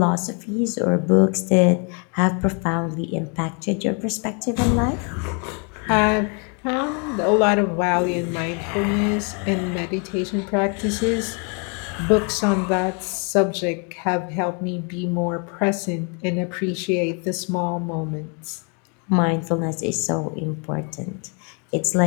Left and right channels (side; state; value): right; quieter; 36.9 dB